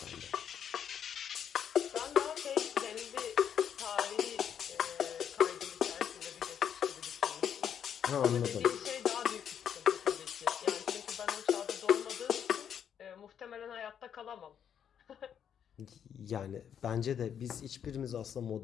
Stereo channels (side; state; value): right; quieter; 8.6 dB